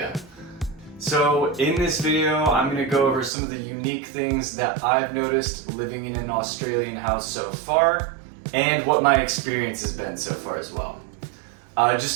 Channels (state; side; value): drops out; left; at 3.3 s